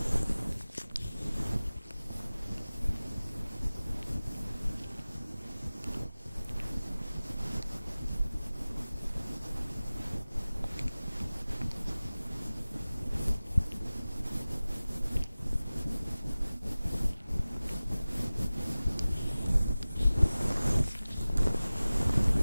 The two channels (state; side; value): inverted; both; correlation -0.97